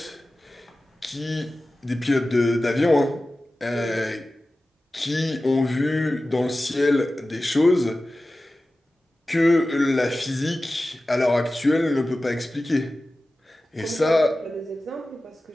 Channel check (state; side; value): normal; both; correlation 0.95